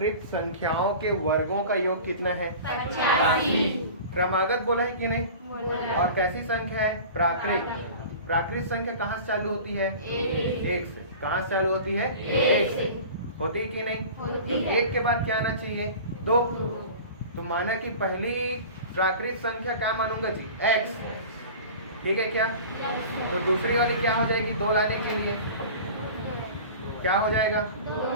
संख्याओं के वर्गों का योग कितना है? 85। क्रमागत बोला है कि नहीं? और कैसी संख्या है? प्राकृत। प्राकृत संख्या कहाँ से चालू होती है? एक से। कहाँ से चालू होती है? एक से। होती है कि नहीं? होती है। एक के बाद क्या आना चाहिए? दो। तो माना कि पहली प्राकृत संख्या क्या मानूंगा जी? x। ठीक है क्या? तो दूसरी वाली क्या हो जाएगी? दो लाने के लिए क्या हो जाएगा?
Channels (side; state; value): both; inverted; correlation -0.38